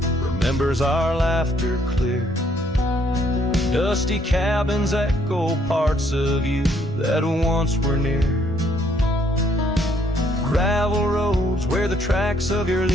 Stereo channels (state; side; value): normal; both; correlation 0.67